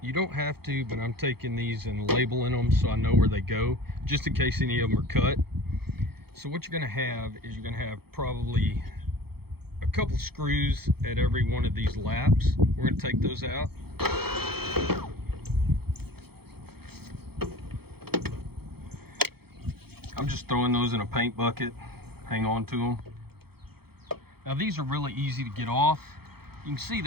You don't have to, but I'm taking these and labeling them so I know where they go, just in case any of them are cut. So what you're going to have is you're going to have probably a couple screws at every one of these laps. We're going to take those out. I'm just throwing those in a paint bucket. Hang on to them. Now these are really easy to get off. You can see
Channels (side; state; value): left; late; 0.96 ms